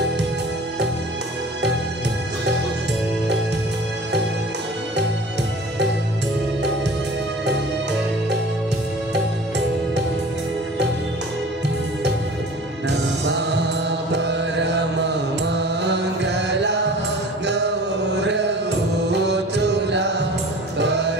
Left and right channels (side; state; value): both; normal; correlation 0.43